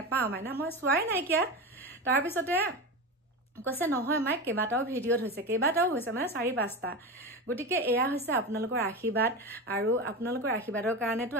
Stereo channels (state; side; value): normal; both; correlation 0.23